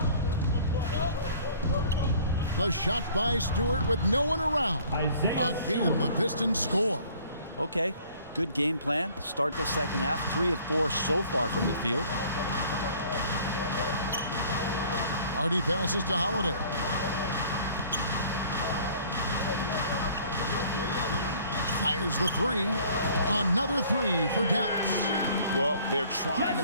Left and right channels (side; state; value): both; inverted; correlation -0.53